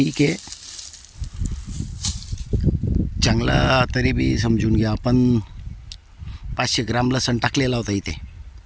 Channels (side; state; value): both; identical; correlation 1.00